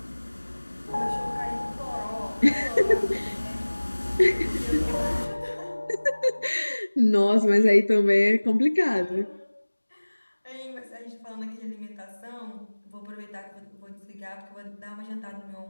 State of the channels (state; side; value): inverted; both; correlation -1.00